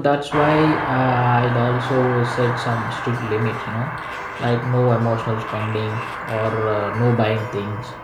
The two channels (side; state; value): both; identical; correlation 1.00